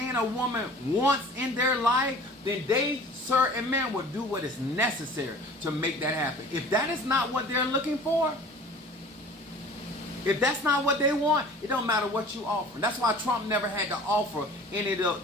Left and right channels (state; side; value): normal; both; correlation 0.45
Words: or woman wants in their life, then they, sir and man, will do what is necessary to make that happen. If that is not what they're looking for, if that's not what they want, it don't matter what you offer. That's why Trump never had to offer any